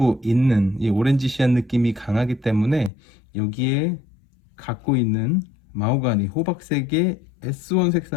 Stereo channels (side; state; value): right; drops out; at 2.9 s